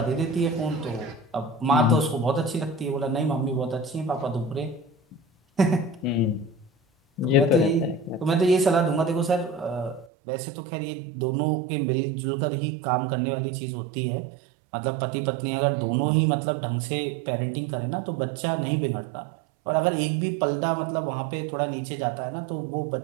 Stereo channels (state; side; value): drops out; left; at 10.1 s